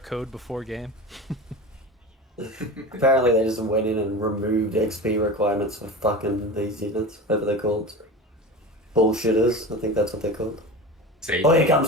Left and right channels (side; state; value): both; normal; correlation 0.30